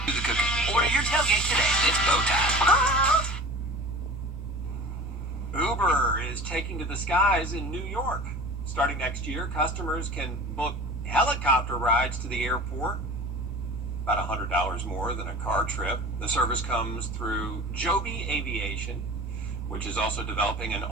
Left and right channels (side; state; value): left; noise; rumble, 19 dB below the sound